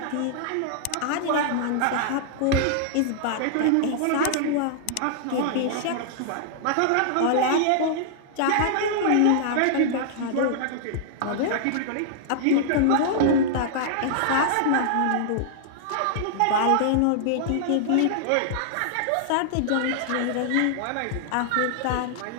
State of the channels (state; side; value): different; both; correlation -0.01